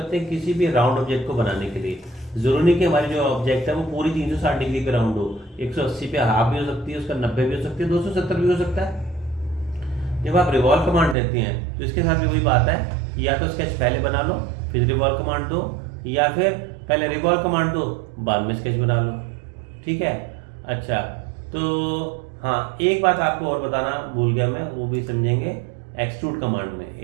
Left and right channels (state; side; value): drops out; left; at 11.2 s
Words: हैं किसी भी राउंड ऑब्जेक्ट को बनाने के लिए। जरूरी नहीं कि हमारी जो ऑब्जेक्ट है वो पूरी 360 डिग्री पे राउंड हो, 180 पे हाफ भी हो सकती है, उसका 90 भी हो सकती है, 270 भी हो सकता है। जब आप रिवॉल्व कमांड देते हैं तो इसके साथ भी वही बात है, या तो स्केच पहले बना लो फिर रिवॉल्व कमांड दो, या फिर पहले रिवॉल्व कमांड दो बाद में स्केच बना लो। ठीक है, अच्छा तो हाँ, एक बात आपको और बताना भूल गया मैं, वो भी समझेंगे। एक्सट्रूड कमांड में